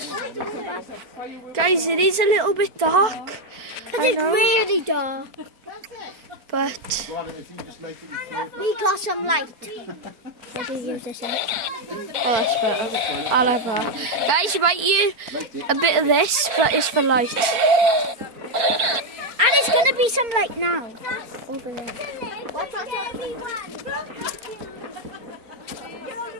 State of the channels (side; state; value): left; late; 4.4 ms